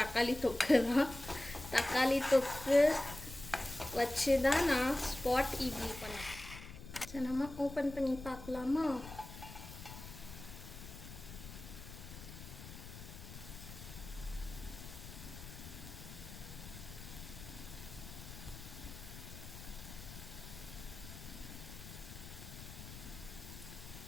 தொக்கு தான். தக்காளி தொக்கு வச்சு தான் நான் ஸ்பாட் இட்லி பண்ணேன். சரி, நம்ம ஓப்பன் பண்ணி பார்க்கலாமா?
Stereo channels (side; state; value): left; noise; rumble, 13 dB below the sound